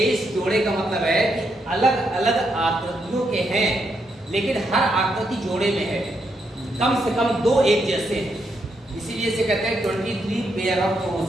जोड़े का मतलब है कि अलग अलग आकृतियों के हैं, लेकिन हर आकृति जोड़े में है, कम से कम दो एक जैसे हैं, इसीलिए इसे कहते हैं 23 पेयर ऑफ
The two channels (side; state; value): both; normal; correlation 0.79